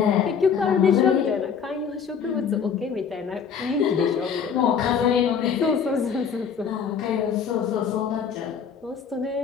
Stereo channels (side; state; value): right; quieter; 6.9 dB